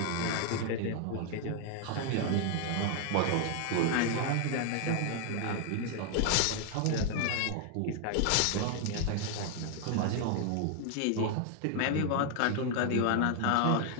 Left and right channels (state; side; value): different; both; correlation 0.00